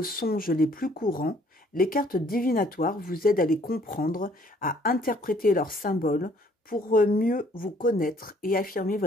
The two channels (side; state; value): both; normal; correlation 0.61